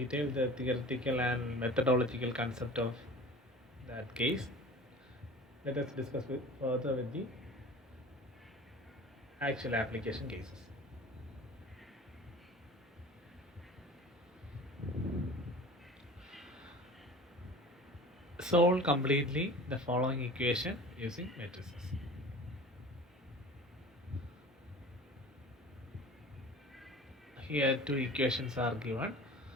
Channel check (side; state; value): both; normal; correlation 0.41